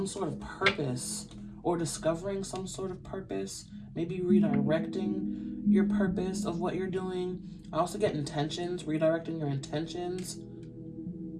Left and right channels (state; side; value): identical; both; correlation 1.00